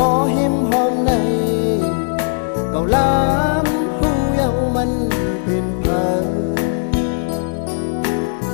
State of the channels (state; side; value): silent; right; digital silence